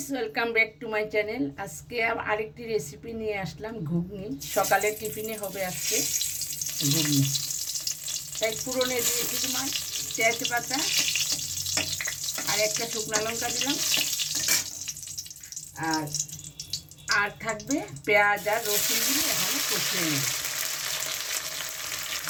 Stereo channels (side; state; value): both; identical; correlation 1.00